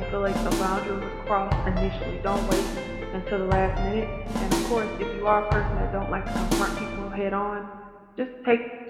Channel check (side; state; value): both; identical; correlation 1.00